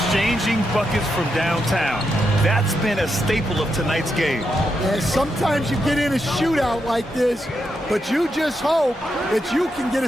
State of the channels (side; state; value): both; normal; correlation 0.83